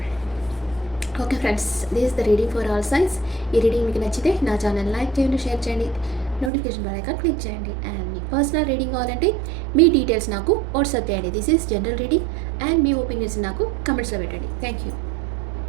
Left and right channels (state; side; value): drops out; left; at 6.5 s